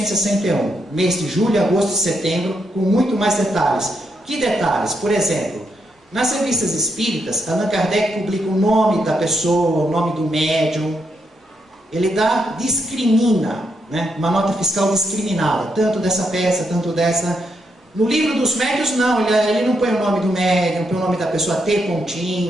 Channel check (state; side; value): normal; both; correlation 0.79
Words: mês de julho, agosto e setembro, com muito mais detalhes. Que detalhes? Por exemplo, nas revistas espíritas, Allan Kardec publica o nome da pessoa, o nome do médium. Ele discrimina, né? Uma nota fiscal discriminada, tanto dessa peça, tanto dessa. No livro dos médiuns, não, ele não põe o nome do médium, põe o nome da pessoa T